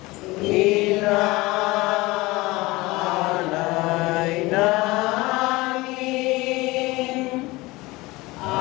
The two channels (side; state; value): right; quieter; 21.4 dB